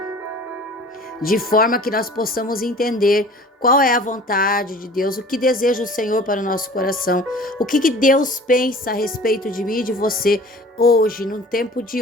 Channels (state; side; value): normal; both; correlation 0.45